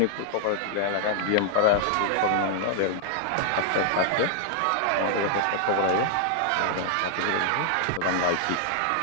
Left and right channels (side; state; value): both; different; correlation -0.01